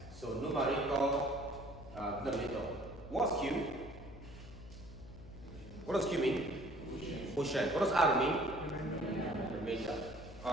So numerator, denominator. What's q? What does q mean? Quotient. What does r mean? Remainder.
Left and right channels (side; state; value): left; noise; hum, 15 dB below the sound